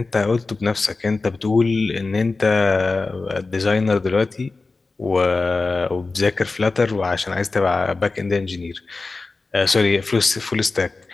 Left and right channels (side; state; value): right; quieter; 3.8 dB